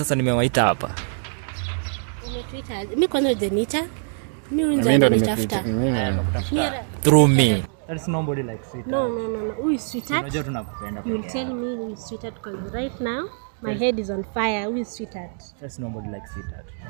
nimewaita hapa. Umetuita? Mimi kwanza hujaniita. Mimi ndo nimekuita. Through me. There's nobody like sweetheart. No. Who is sweetheart? Unajua tunakupenda. You will tell me who is sweetheart because right now my head is on fire. Who is sweetheart? There's nobody like sweetheart.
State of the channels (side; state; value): left; silent; digital silence